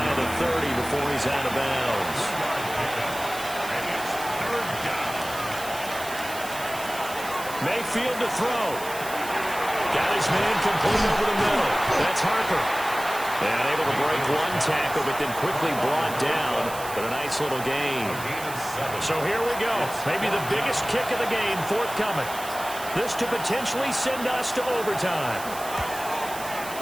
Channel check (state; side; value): noise; right; hiss, 12 dB below the sound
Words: of the 30 before he's out of bounds. Mayfield to throw. Got his man complete over the middle. That's Harper. And able to break one tackle, but then quickly brought down. But a nice little gain. So here we go. Maybe the biggest kick of the game forthcoming. This to potentially send us to overtime.